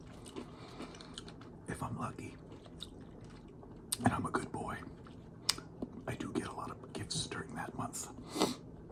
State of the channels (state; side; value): identical; both; correlation 1.00